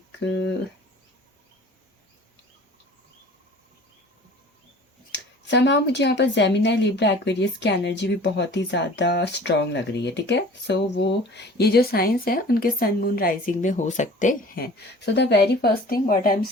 समाव मुझे यहाँ पर जेमिनी, लिब्रा, एक्वेरियस की एनर्जी भी बहुत ही ज़्यादा स्ट्रॉन्ग लग रही है, ठीक है। सो वो ये जो साइंस है उनके सन मून राइजिंग में हो सकते हैं। So the very first thing what I am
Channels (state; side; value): normal; both; correlation 0.46